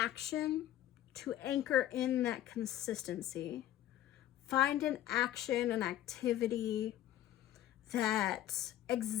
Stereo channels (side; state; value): right; quieter; 12.6 dB